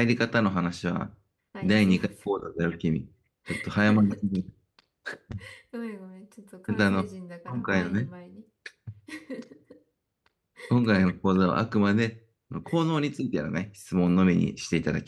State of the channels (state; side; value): identical; both; correlation 1.00